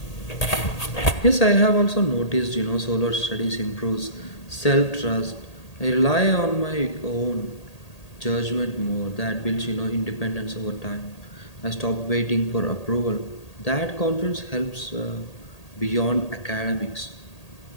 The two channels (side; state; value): right; late; 1.8 ms